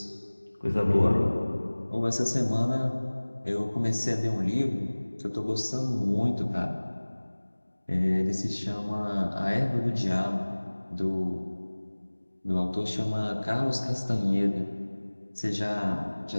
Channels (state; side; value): inverted; both; correlation -1.00